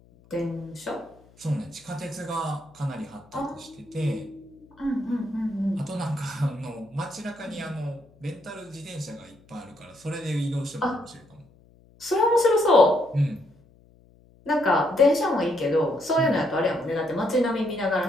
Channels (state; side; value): noise; left; hum, 28 dB below the sound